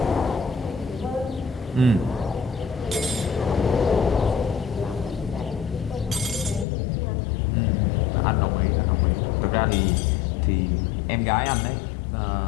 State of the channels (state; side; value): drops out; right; at 6.7 s